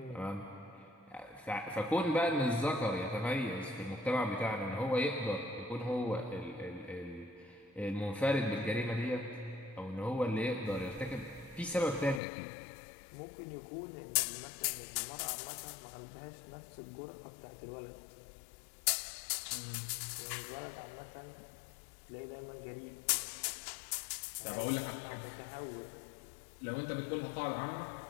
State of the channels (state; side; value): drops out; right; at 12.2 s